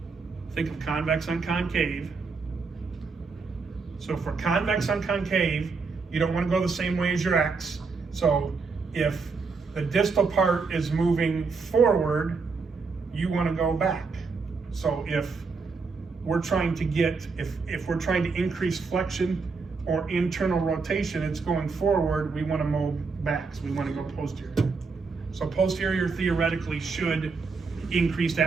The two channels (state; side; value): quieter; left; 4.6 dB